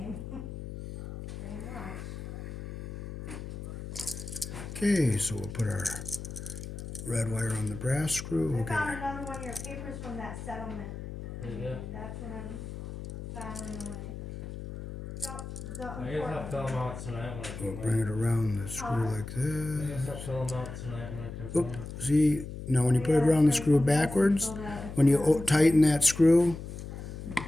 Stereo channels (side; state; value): left; noise; hum, 9 dB below the sound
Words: Pretty much. Okay, so we'll put our red wire on the brass screw. I We'll get found our, another one of your papers from that settlement. Yeah. That's what I'm filing away. Yup, the I guess I'll fill them out tonight when I we'll bring it around the screw like I this. guess I'll fill them out tonight when I come Oop, home. see, now when you put it around the screw backwards, when you tighten that screw,